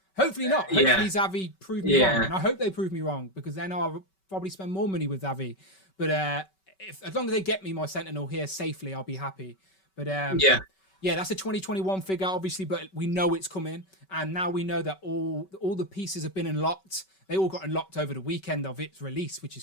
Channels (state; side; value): late; right; 5.3 ms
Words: Hopefully not. Hopefully Xavi prove me wrong. And I hope they prove me wrong because then I'll probably spend more money with Xavi. But as long as they get me my Sentinel here safely, I'll be happy. But that's a 2021 figure, obviously, but we know it's coming. And now we know that all the pieces have been unlocked. They all got unlocked over the weekend of its release, which is